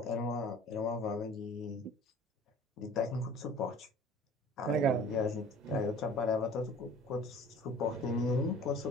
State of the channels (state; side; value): normal; both; correlation 0.47